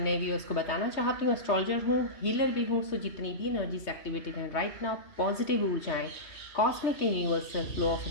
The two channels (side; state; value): right; late; 3.2 ms